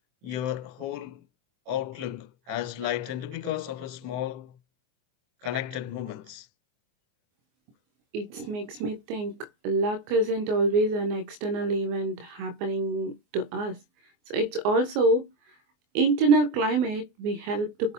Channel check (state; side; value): late; left; 24 ms